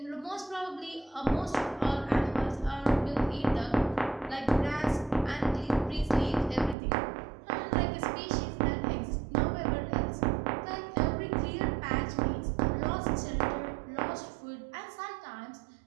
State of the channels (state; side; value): drops out; left; at 6.8 s